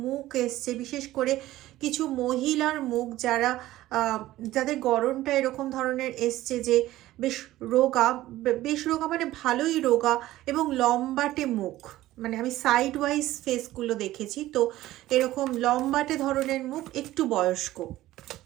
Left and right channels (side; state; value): left; quieter; 15.7 dB